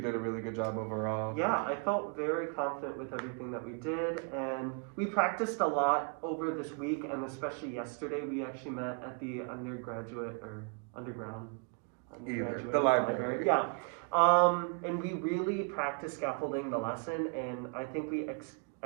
a really good job overall. Yeah, I felt very confident with everything that we did, and we practiced a lot over this week, and especially yesterday. We actually met at the underground The library. Yeah. And we really practiced scaffolding the lesson, and I think we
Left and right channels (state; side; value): quieter; left; 36.1 dB